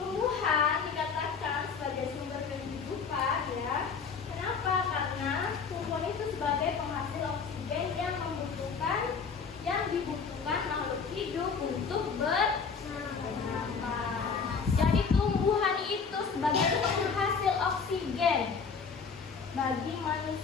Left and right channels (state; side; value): quieter; right; 5.6 dB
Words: dikatakan sebagai sumber kehidupan ya. Kenapa? Karena tumbuhan itu sebagai penghasil oksigen yang dibutuhkan makhluk hidup untuk bernafas. Jadi tumbuhan itu sebagai penghasil oksigen bagi